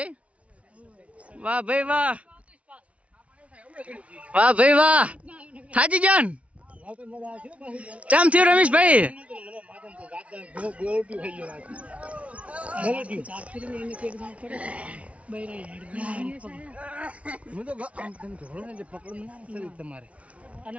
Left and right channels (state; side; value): late; left; 0.064 ms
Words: વાહ ભાઈ વાહ, વાહ ભાઈ વાહ. થાજી જાન ચમ થયું રમેશભાઈ? તમારે